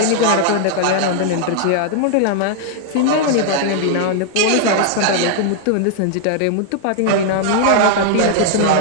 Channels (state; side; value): different; both; correlation -0.01